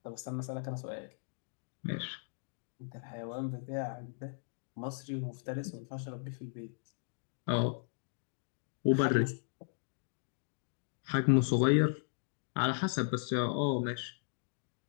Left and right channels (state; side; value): silent; right; digital silence